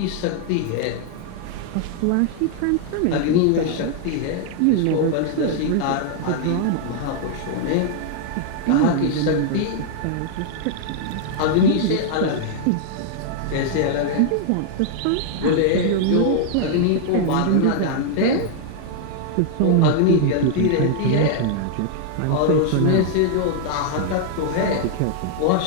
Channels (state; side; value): different; both; correlation -0.01